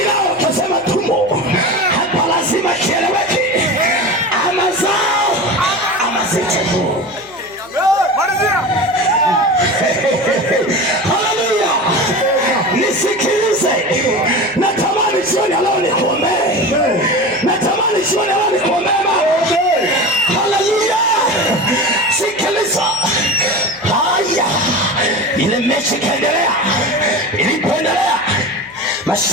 nao wakasema tumo. Hapa lazima kieleweke, ama zao ama zetu. Haleluya. Nisikilize, natamani jioni leo nikuombee, natamani jioni leo nikuombee. Haleluya. Sikiliza. Haya, ile mechi kaendelea. Ilipoendelea,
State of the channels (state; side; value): noise; left; hum, 26 dB below the sound